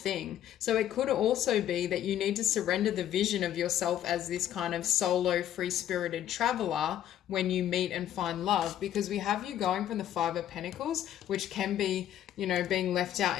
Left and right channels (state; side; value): quieter; right; 11.4 dB